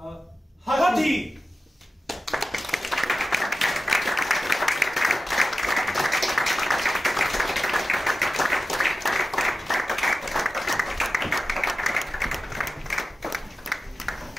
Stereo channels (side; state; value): both; normal; correlation 0.94